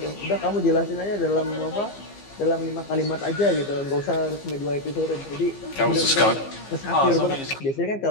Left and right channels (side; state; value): right; late; 15 ms